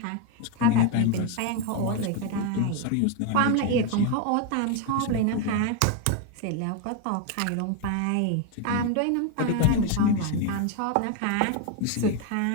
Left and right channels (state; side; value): different; both; correlation 0.01